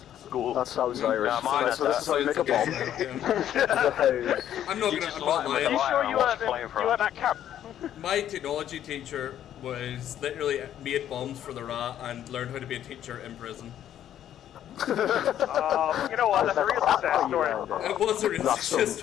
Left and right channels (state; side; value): quieter; right; 10.9 dB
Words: school. That sounds Irish. So this is how you make a bomb. I'm not lying. Are you sure you were at that camp? My technology teacher was literally made bombs for the RA and learned how to be a teacher in prison. You know what? That's a real success story. It was a real success